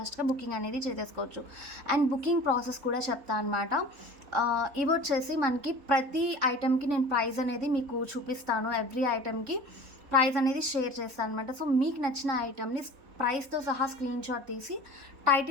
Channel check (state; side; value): late; left; 3.7 ms